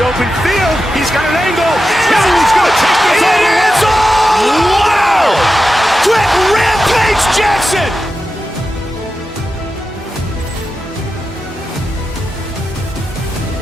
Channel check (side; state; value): both; normal; correlation 0.91